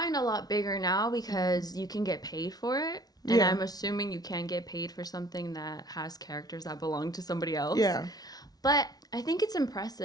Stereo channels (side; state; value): right; late; 0.19 ms